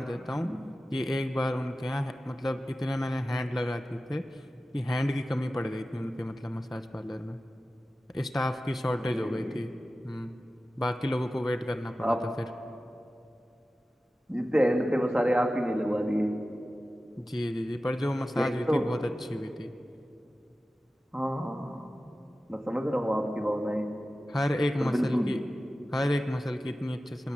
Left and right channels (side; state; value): both; normal; correlation 0.95